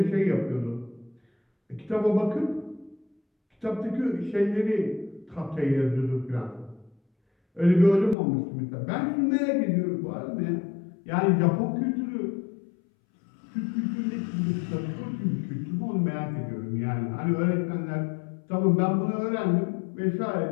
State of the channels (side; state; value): right; drops out; at 8.2 s